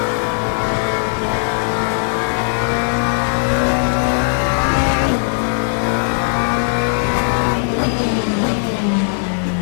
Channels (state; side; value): silent; right; digital silence